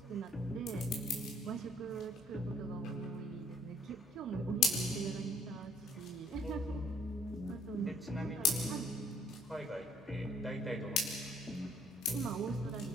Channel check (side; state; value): both; normal; correlation 0.63